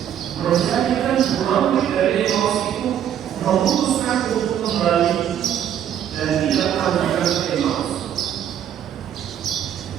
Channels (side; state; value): left; quieter; 10.0 dB